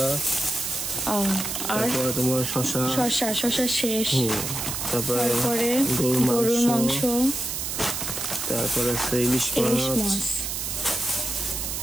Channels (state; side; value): noise; right; hiss, 3 dB below the sound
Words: আর তোমার শসা শেষ, তারপরে গরুর মাংস, তারপরে আছে ইলিশ মাছ,